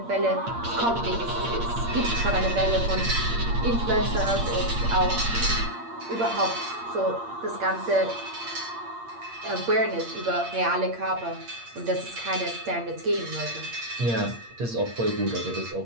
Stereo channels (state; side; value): late; left; 8.6 ms